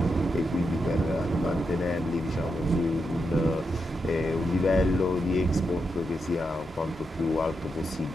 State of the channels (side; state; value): both; normal; correlation 0.85